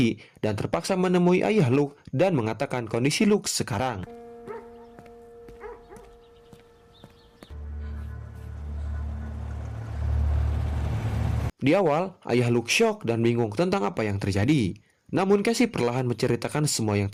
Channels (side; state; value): both; identical; correlation 1.00